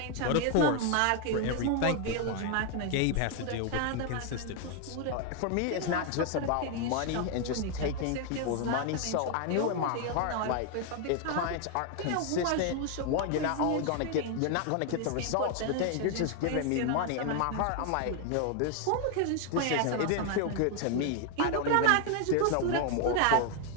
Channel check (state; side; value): different; both; correlation 0.01